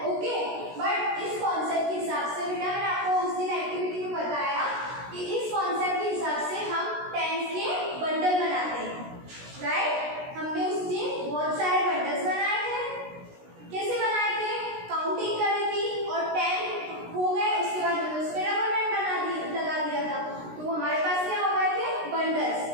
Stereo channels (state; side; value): late; left; 16 ms